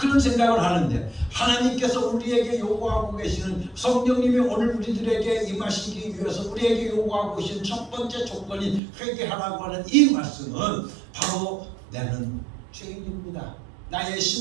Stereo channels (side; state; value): left; drops out; at 8.8 s